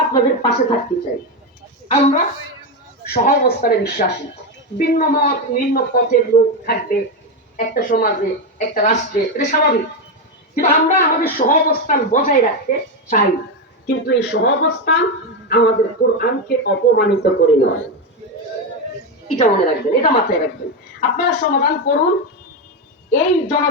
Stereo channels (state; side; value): normal; both; correlation 0.10